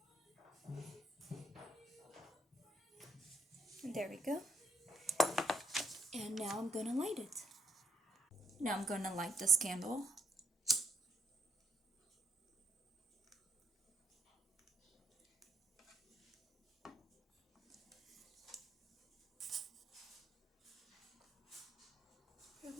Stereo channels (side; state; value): both; normal; correlation 0.72